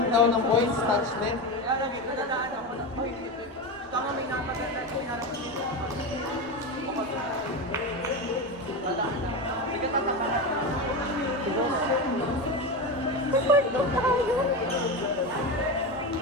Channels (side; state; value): right; noise; rumble, 28 dB below the sound